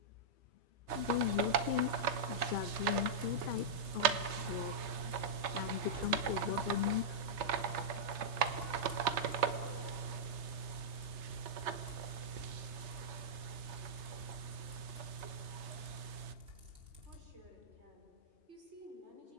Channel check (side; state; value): left; late; 3.3 ms